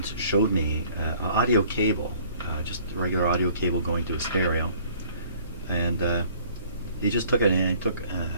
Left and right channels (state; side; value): inverted; both; correlation -0.56